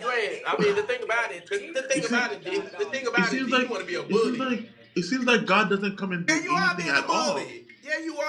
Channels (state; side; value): identical; both; correlation 1.00